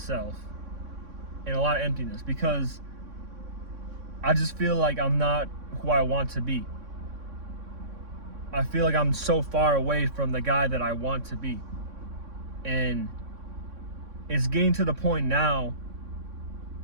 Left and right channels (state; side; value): late; left; 3.6 ms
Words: and a lot of emptiness, because I just feel like I'm not who I want to be. I feel like I'm so far away from the guy that I want to be. And it's getting to the point now